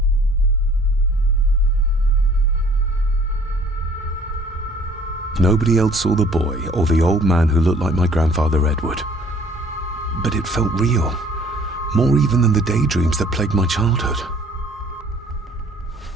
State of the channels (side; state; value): both; normal; correlation 0.55